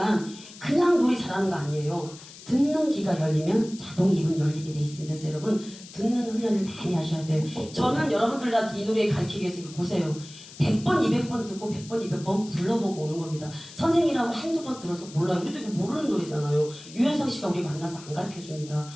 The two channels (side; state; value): left; noise; hiss, 17 dB below the sound